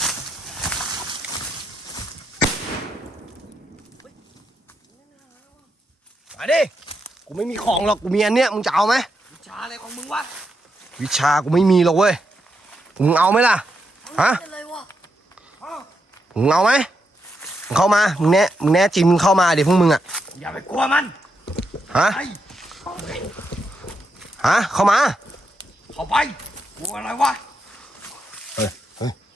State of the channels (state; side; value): normal; both; correlation 0.82